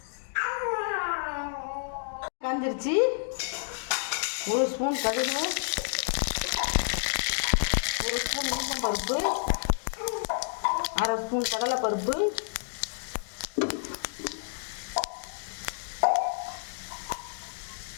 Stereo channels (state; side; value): silent; right; digital silence